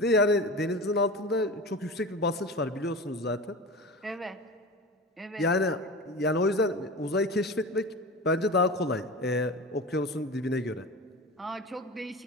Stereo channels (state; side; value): normal; both; correlation 0.30